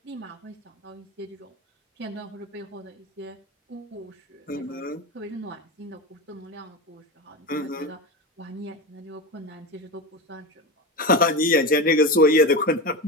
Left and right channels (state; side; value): normal; both; correlation 0.22